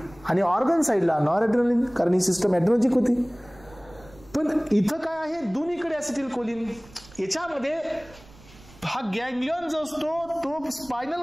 आणि ऑर्गन साइडला नॉर ॲड्रेनलिन, कारण ही सिस्टम ॲड्रेनर्जिक होती. पण इथं काय आहे? दोन्हीकडे ॲसिटिल कोलिन. याच्यामध्ये हा गँग्लियॉन जो असतो तो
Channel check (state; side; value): noise; right; rumble, 23 dB below the sound